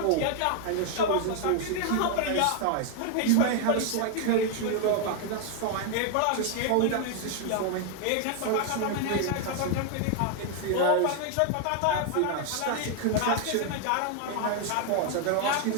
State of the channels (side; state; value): both; different; correlation 0.00